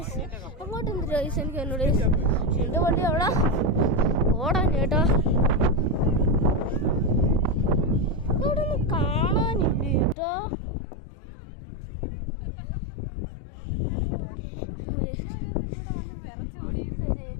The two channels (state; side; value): drops out; right; at 10.2 s